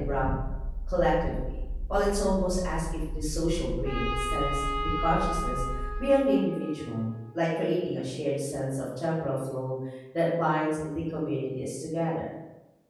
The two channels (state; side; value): identical; both; correlation 1.00